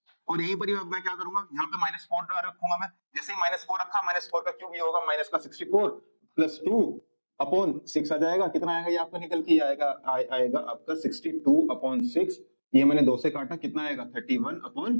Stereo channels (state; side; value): inverted; both; correlation -1.00